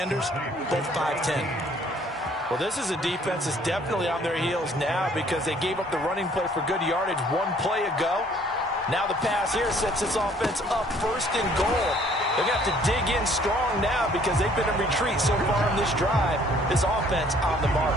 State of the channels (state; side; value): normal; both; correlation 0.59